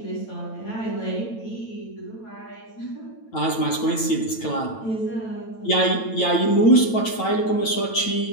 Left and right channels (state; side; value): late; right; 9.0 ms